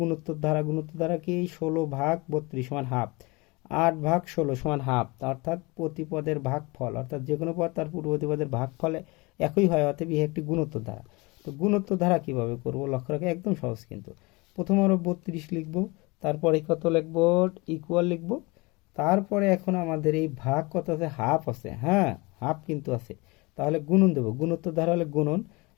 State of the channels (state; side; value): quieter; right; 25.6 dB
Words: গুণোত্তর ধারা, গুণোত্তর ধারা কি 16 ভাগ 32 সমান হাফ, 8 ভাগ 16 সমান হাফ, অর্থাৎ প্রতি পদের ভাগফল, অর্থাৎ যে কোনো পদ তার পূর্ববর্তী পদের ভাগফলে একই হয়, অতএব ইহা একটি গুণোত্তর ধারা। তো গুণোত্তর ধারা কিভাবে করব, লক্ষ্য রাখো একদম সহজ কিন্তু। প্রথম আমরা 32 লিখব, তারপরে কত লিখব ইকুয়াল লিখব, তারপরে এখন আমাদের এই ভাগ কত আছে, হাফ আছে। হ্যাঁ, হাফ কিন্তু আছে, তাহলে গুণন দেব, গুণোত্তর ধারা হলে গুণন,